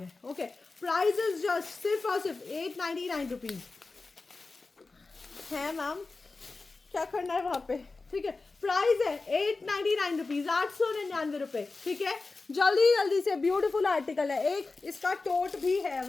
ओके। प्राइस इज जस्ट सिर्फ और सिर्फ ₹899 है। मैम क्या करना है वहाँ पे, ठीक है। प्राइस है ₹899, ₹899, ठीक है। जल्दी जल्दी से, ब्यूटीफुल आर्टिकल है। एक इसका टोट भी है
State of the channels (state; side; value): quieter; right; 3.8 dB